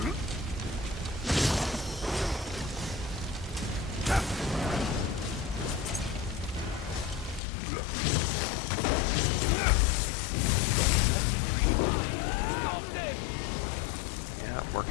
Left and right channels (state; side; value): drops out; right; at 7.4 s